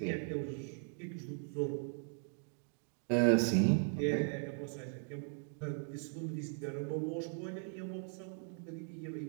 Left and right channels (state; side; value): silent; left; 52 dB below the other